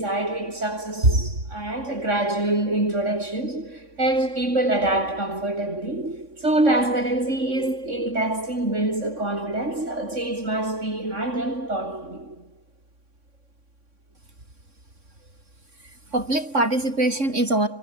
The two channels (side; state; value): left; late; 3.6 ms